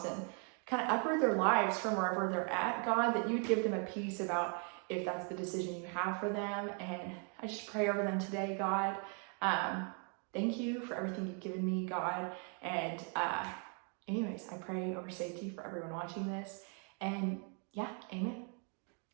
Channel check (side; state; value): left; quieter; 39.6 dB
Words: and kind of uproot their lives from wherever they're at, God, that you'd give them a peace about if that's the decision you have for them. And I just pray over them today, God. Thank you for everything you've given me, God. And anyways, I pray over safety for everyone watching this. And yeah, amen.